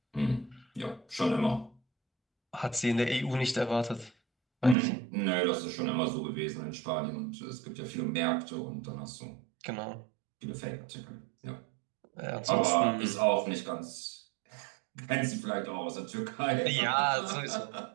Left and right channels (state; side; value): drops out; left; at 4.8 s